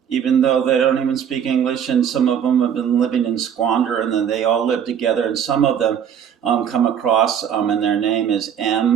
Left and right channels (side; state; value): left; quieter; 8.5 dB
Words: Even though they don't even speak English, and some of them have been living in squander, and then they all live together, and some of them come across, and their name is